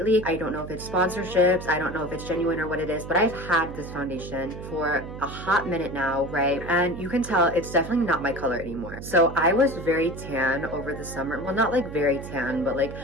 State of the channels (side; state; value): right; noise; hum, 10 dB below the sound